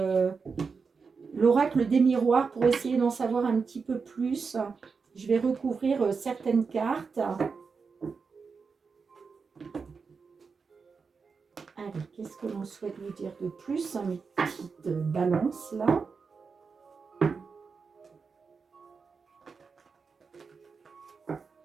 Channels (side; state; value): left; quieter; 5.1 dB